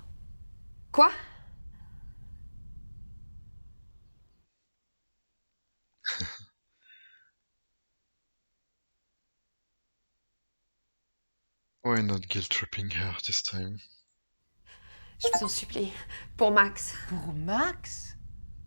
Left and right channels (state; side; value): inverted; both; correlation -1.00